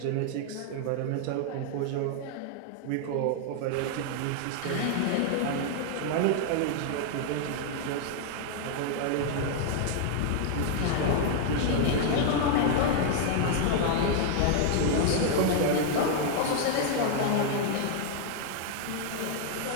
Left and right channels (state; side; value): different; both; correlation 0.00